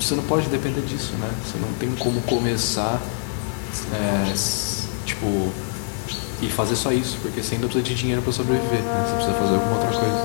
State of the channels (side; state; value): right; silent; 63 dB below the other